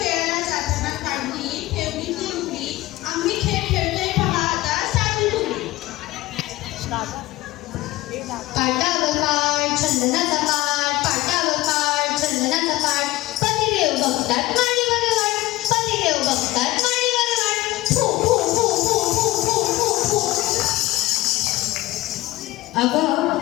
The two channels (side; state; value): right; quieter; 17.9 dB